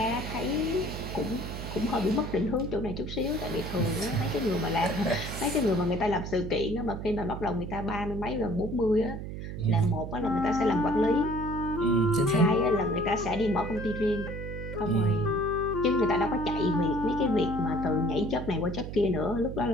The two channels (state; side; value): noise; right; hum, 7 dB below the sound